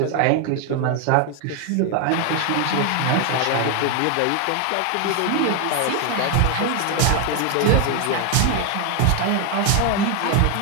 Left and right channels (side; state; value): both; different; correlation 0.01